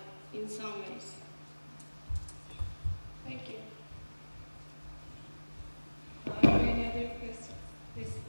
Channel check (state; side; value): inverted; both; correlation -1.00